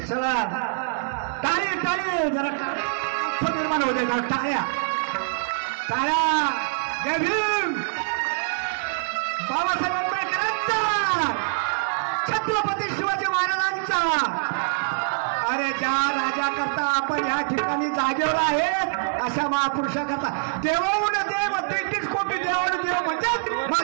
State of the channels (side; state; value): left; silent; 62 dB below the other